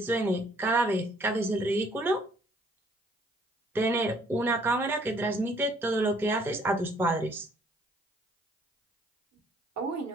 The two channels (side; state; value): both; normal; correlation 0.62